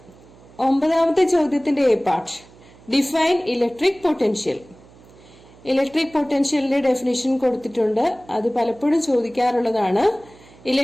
9ാമത്തെ ചോദ്യത്തിന്റെ A part, define electric potential. Electric പൊട്ടൻഷ്യലിന്റെ ഡെഫിനിഷൻ കൊടുത്തിട്ടുണ്ട്. അത് പലപ്പോഴും ചോദിക്കാറുള്ളതാണ്.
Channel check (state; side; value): noise; right; hum, 25 dB below the sound